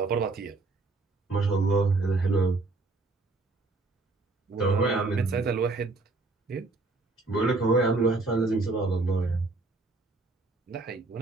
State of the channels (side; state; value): left; quieter; 3.4 dB